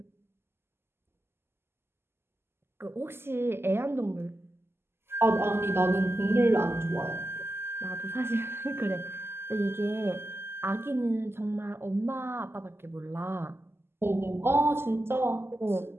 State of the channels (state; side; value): late; left; 0.12 ms